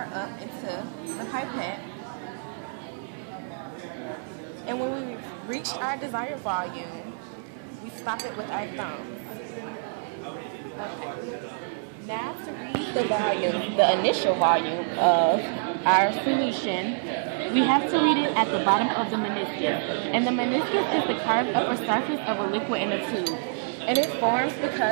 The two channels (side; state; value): left; silent; 60 dB below the other